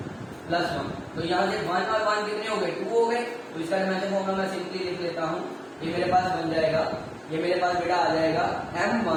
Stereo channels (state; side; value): identical; both; correlation 1.00